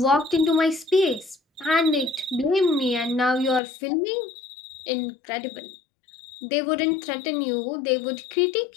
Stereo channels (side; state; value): right; drops out; at 3.6 s